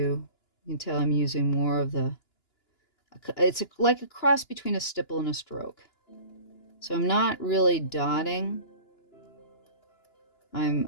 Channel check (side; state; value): right; late; 2.9 ms